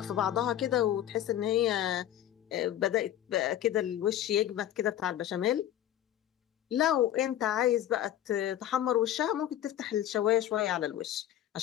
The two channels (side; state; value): right; quieter; 11.8 dB